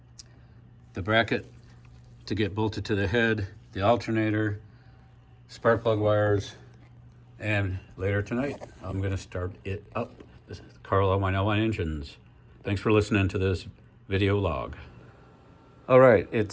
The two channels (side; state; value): both; identical; correlation 1.00